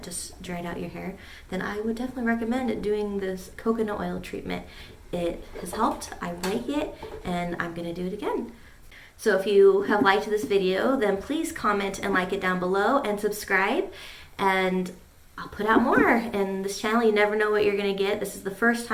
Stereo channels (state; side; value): identical; both; correlation 1.00